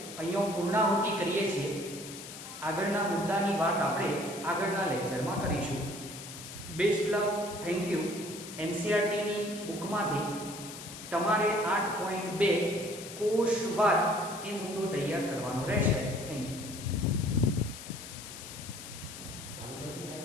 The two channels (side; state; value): left; noise; hiss, 12 dB below the sound